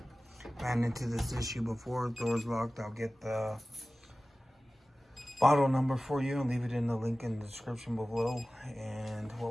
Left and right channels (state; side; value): normal; both; correlation 0.97